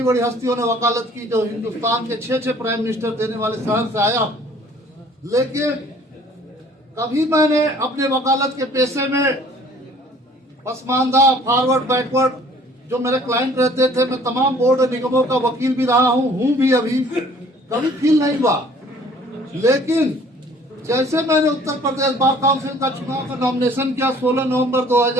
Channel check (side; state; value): both; normal; correlation 0.54